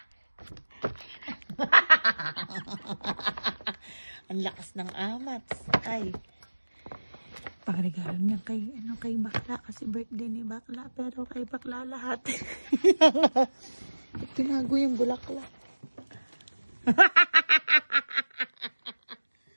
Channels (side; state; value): both; inverted; correlation -1.00